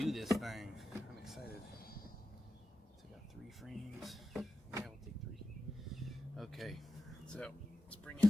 this thing. I'm excited. So I got 3 frames. Yeah, we'll take 3. Okay, so let's bring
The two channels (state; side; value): normal; both; correlation 0.92